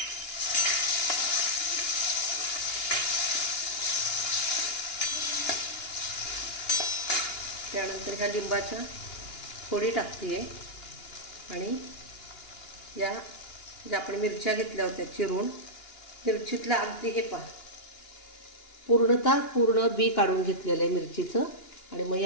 त्यानंतर ह्या लिंबाच्या फोडी टाकते आणि या ज्या आपण मिरच्या घेतल्या होत्या चिरून, मिरचीतला अगदी हे पहा पूर्ण बी काढून घेतलेलं आहे मिरचीचं. आणि मग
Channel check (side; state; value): right; late; 2.9 ms